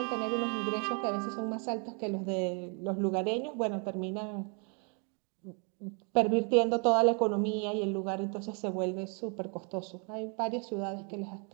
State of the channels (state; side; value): quieter; left; 37.3 dB